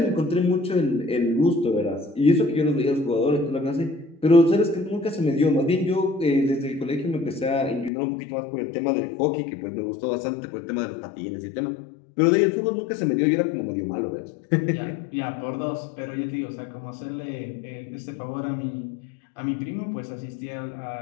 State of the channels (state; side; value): drops out; right; at 7.9 s